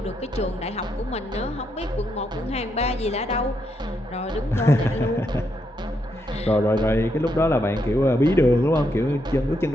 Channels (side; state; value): both; normal; correlation 0.79